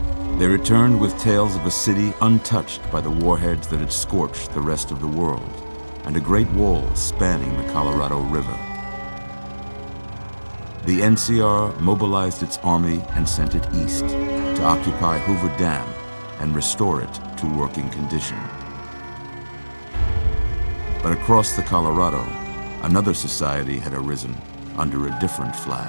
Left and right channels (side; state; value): both; inverted; correlation -1.00